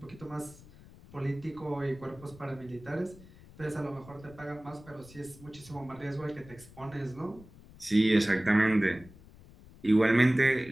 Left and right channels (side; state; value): left; noise; rumble, 21 dB below the sound